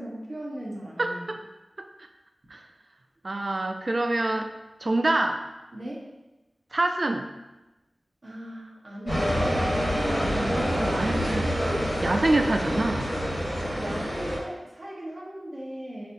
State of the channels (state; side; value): normal; both; correlation 0.96